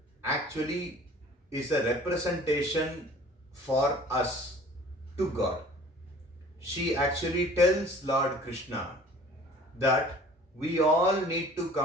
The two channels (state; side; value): normal; both; correlation 0.48